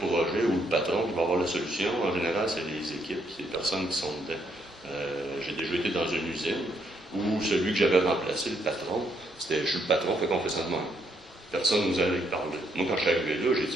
projet ou le patron qui va avoir la solution. En général, c'est les équipes, c'est les personnes qui sont dedans. J'ai déjà été dans une usine où celui que j'avais remplacé, le patron, je suis le patron, fait qu'on fait ça de même. Personne ne nous allait parler. Moi, quand je suis arrivé là, j'ai dit,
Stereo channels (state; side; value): normal; both; correlation 0.73